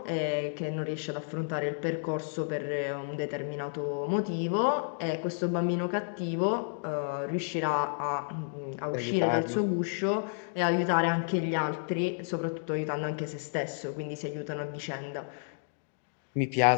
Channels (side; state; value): right; silent; digital silence